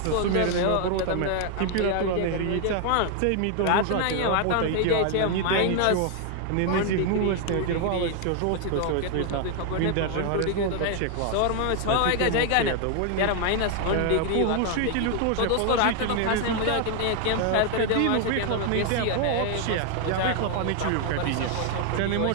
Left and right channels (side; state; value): both; different; correlation 0.00